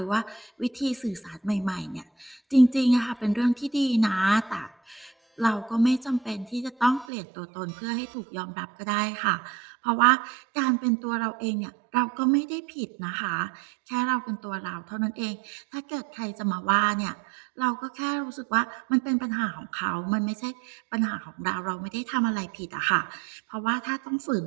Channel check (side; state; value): left; drops out; at 7.1 s